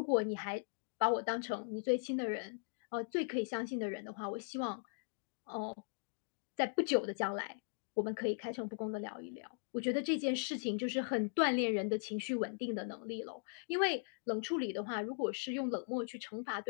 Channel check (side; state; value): right; silent; digital silence